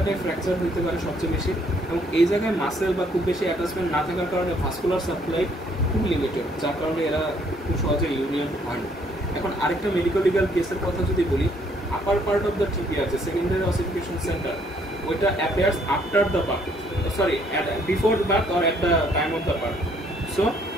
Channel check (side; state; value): both; normal; correlation 0.66